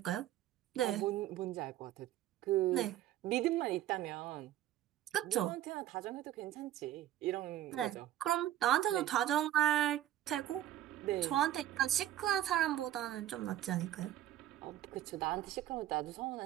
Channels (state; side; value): quieter; left; 12.9 dB